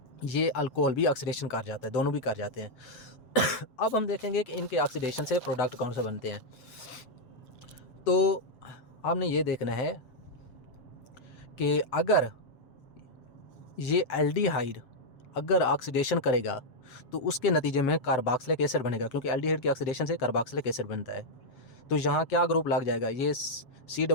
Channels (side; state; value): right; late; 7.3 ms